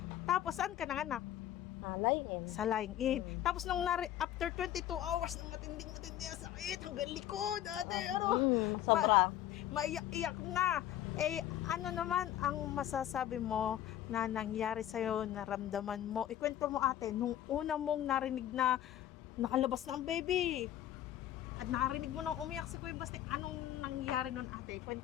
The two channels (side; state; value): right; quieter; 12.2 dB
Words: Tapos, saan ka nanganak? Laing-in. Sa lying-in. Tapos, after 22 hours, ng matinding ang sakit, hanggang likod, ate, Sobra. Maiyak-iyak na. Ano naman ang masasabi mo na nangyari sa'yo, naramdaman mo? Ikwento mo, ate, nung una mong narinig na nakalabas na ang baby, at narinig mo nang umiyak si Kuya Baste, anong nangyari nun, ate?